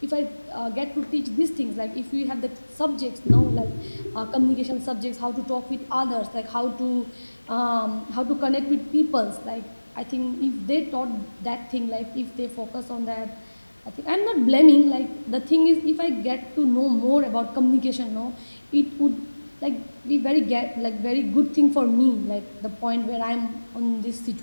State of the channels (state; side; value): inverted; both; correlation -1.00